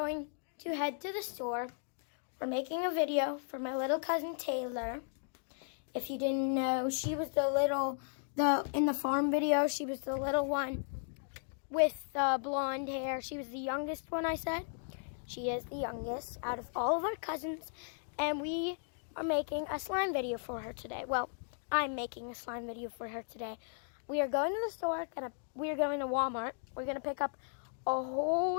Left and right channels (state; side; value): silent; right; digital silence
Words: to head to the store. We're making a video for my little cousin Taylor. If you didn't know, she was in the farm video, she was the little one with blonde hair. She was the youngest one, I said. She is the youngest out of all of our cousins. And we are making a slime video for her today. Well, I'm making a slime video for her today. We are going to the store. We are going to Walmart. We're going to pick up a